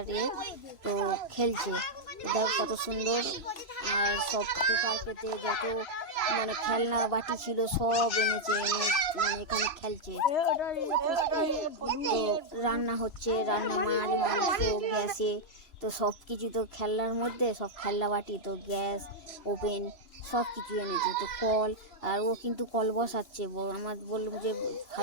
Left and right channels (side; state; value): right; late; 3.0 ms